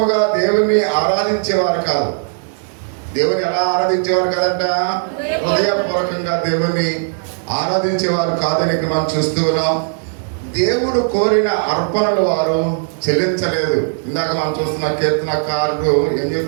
దేవుని ఆరాధించేవారు కాదు. దేవుని ఎలా ఆరాధించేవారు కాదంట? హృదయపూర్వకంగా దేవుని ఆరాధించేవారు కాదని ఇక్కడ మనం చూస్తూ ఉన్నాం. దేవుడు కోరిన అర్పణలు వారు చెల్లించలేదు. ఇందాక మనం చూస్తున్న కీర్తనకారుడు ఏం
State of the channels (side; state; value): left; silent; 68 dB below the other